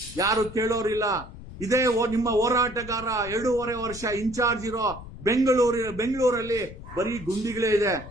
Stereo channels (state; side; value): noise; left; rumble, 14 dB below the sound